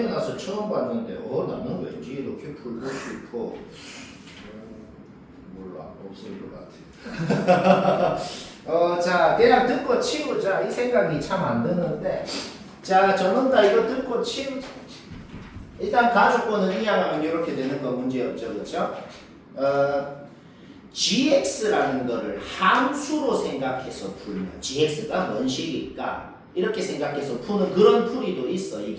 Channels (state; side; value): identical; both; correlation 1.00